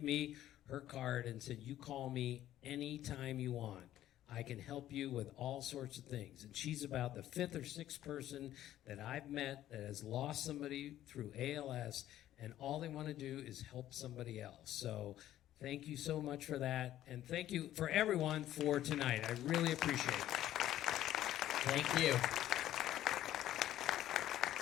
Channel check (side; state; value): right; quieter; 13.0 dB